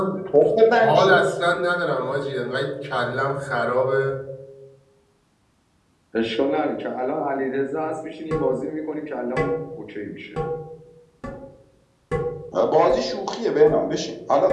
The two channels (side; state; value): both; identical; correlation 1.00